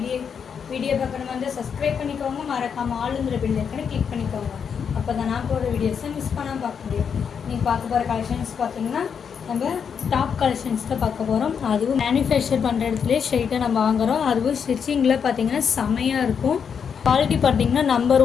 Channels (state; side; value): quieter; right; 6.9 dB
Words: video பார்க்கணும் வந்து subscribe பண்ணிக்கோங்க, மறக்காம ஆளுங்கிற பெல் ஐக்கனை கிளிக் பண்ணிக்கோங்க. அப்போ தான் நான் போகிற வீடியோஸை மிஸ் பண்ணாமல் பார்க்க முடியும். நீங்கள் பார்க்க போகிற கலெக்ஷன்ஸ் பார்த்தீங்கன்னா நம்ம டாப் கலெக்ஷன்ஸ் தான் பார்க்க போகிறோம். அதுவும் மேனுஃபேக்சர் பண்ணுற இடத்துலேயே ஸ்ட்ரெயிட்டாக நம்ம வாங்குகிறோம். அதுவும் ஸ்டிச்சிங்கில் பார்த்தீங்கன்னா செமையாக இருக்கும். குவாலிட்டி பார்த்தீங்கன்னா நம்பர்